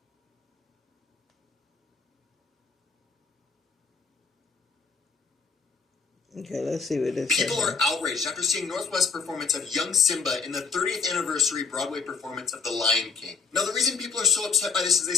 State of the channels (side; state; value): right; quieter; 5.1 dB